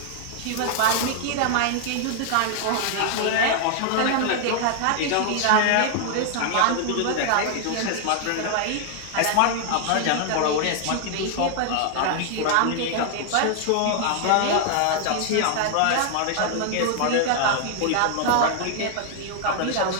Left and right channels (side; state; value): both; different; correlation 0.00